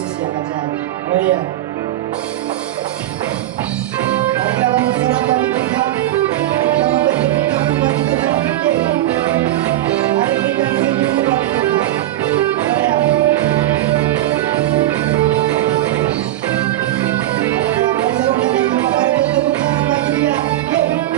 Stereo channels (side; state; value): left; quieter; 14.1 dB